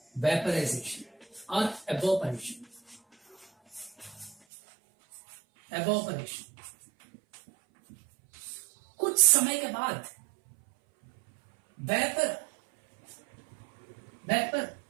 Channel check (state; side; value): drops out; left; at 4.4 s